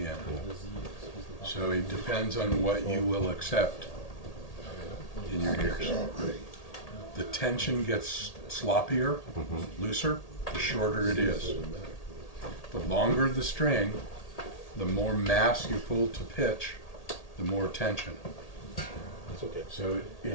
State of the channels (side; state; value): right; late; 1.8 ms